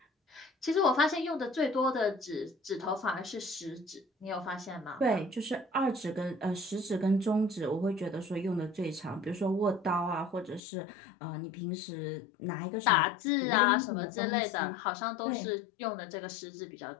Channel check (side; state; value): right; drops out; at 10.6 s